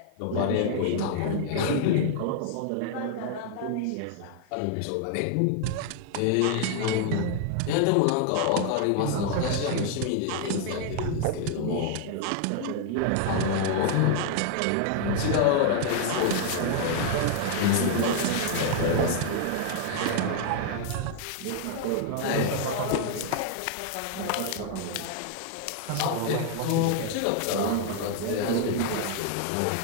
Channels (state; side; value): different; both; correlation 0.00